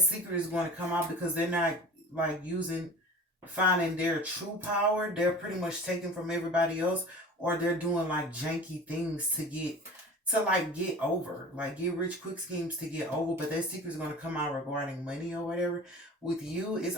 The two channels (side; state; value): both; normal; correlation 0.39